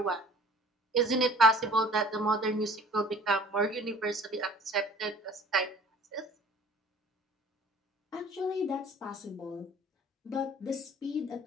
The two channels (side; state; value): both; normal; correlation 0.48